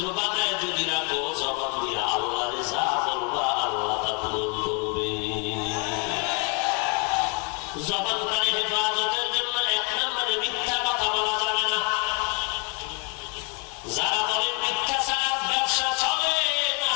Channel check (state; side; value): quieter; right; 34.8 dB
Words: বানায় যদি রাখো, জবান দিয়ে আল্লাহরে যা বলবা আল্লাহ তা পূরণ করবে। জবানটারে হেফাজতের জন্য এক নম্বরে মিথ্যা কথা বলা যাবে না। যারা বলেন মিথ্যা ছাড়া ব্যবসা চলে না,